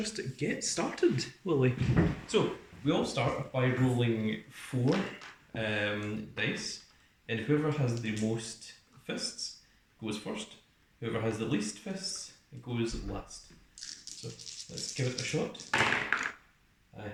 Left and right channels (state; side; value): identical; both; correlation 1.00